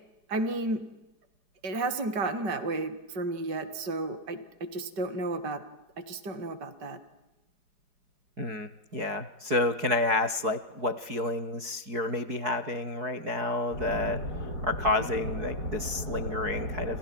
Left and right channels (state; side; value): late; left; 4.7 ms